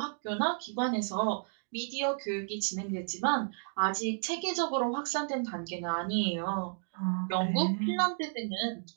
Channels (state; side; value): silent; left; digital silence